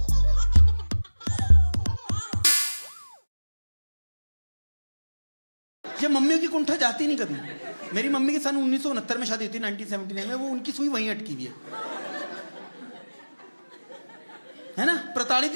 ये मम्मियों की कुंठा जाती नहीं कभी। मेरी मम्मी की सन 1969 में शादी हुई थी, 1979 में। वो उनकी सुई वहीं अटकी हुई है ना, प्रताड़ित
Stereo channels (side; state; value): both; inverted; correlation -1.00